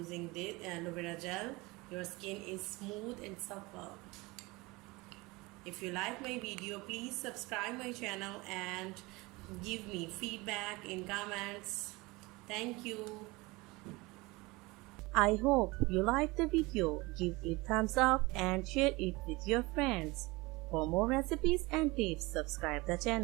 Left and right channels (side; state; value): left; quieter; 23.2 dB